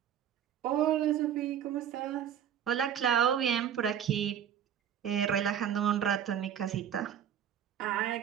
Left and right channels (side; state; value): left; quieter; 9.3 dB